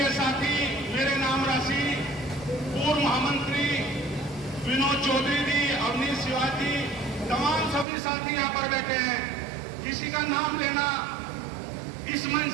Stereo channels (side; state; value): left; drops out; at 7.9 s